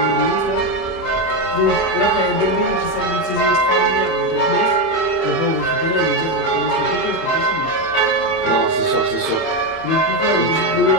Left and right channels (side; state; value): right; late; 30 ms